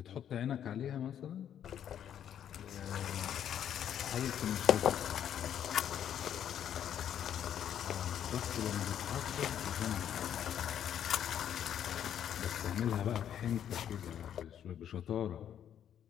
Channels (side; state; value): right; quieter; 9.7 dB